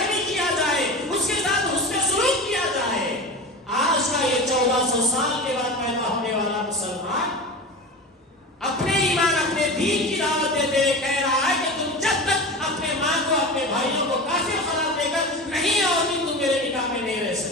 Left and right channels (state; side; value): normal; both; correlation 0.29